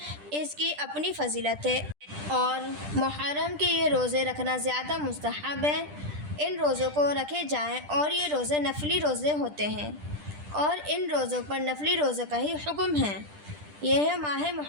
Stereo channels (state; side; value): late; left; 10 ms